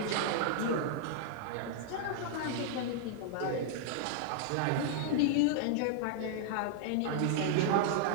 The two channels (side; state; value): both; different; correlation -0.01